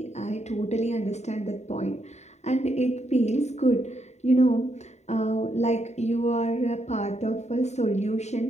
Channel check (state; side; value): late; right; 0.32 ms